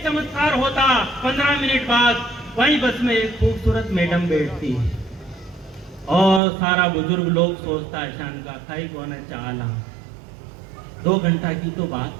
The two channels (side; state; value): left; drops out; at 6.4 s